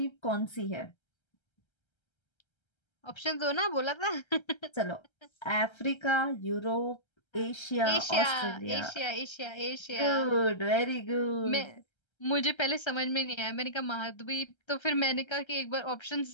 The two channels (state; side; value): late; right; 1.3 ms